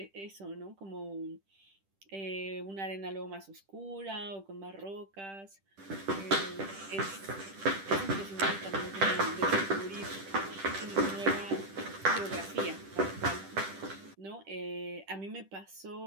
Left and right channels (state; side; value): late; left; 10 ms